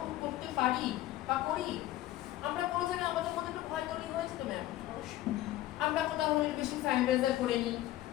করতে পারি বা করি? আমরা কোনো জায়গায় আমাদের মধ্যে একটু ভয় তৈরি হয়েছে তো ম্যাম। আমরা কোথাও হলে বেশি স্যানিটাইজার করে নিই,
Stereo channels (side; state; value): right; quieter; 15.0 dB